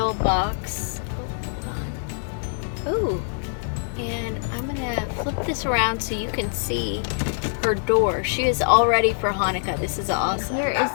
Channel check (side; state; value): right; silent; digital silence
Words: box. Oh, hold on. Ooh. And I'm gonna flip this around so you can see her door. She is all ready for Hanukkah. This is awesome. Here is